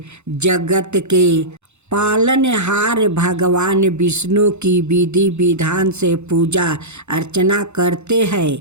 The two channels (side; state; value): left; late; 0.82 ms